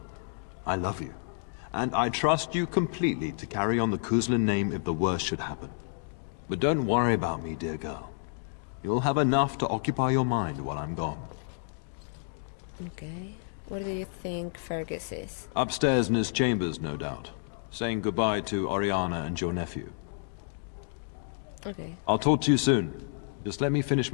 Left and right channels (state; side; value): silent; right; digital silence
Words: I love you. And I trust you completely to carry on the Kuzlin name if the worst should happen. But don't worry about me, dear girl. You'll have enough to occupy your mind while I'm gone. Okay. Where do you think Fergus is? Upstairs in his chambers, no doubt. Saying goodbye to Oriana and your nephew. Okay. I'll talk to you soon. Just let me finish